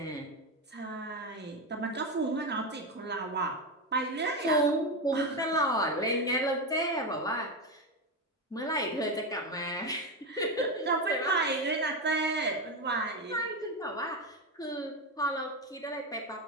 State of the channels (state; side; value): normal; both; correlation 0.13